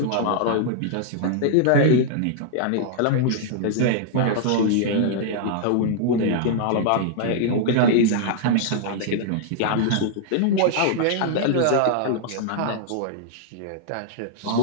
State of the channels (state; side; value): different; both; correlation -0.01